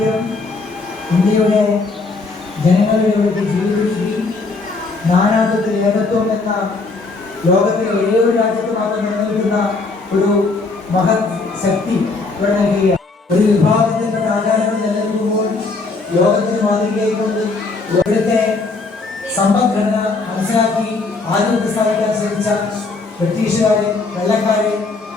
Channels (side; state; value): right; quieter; 3.8 dB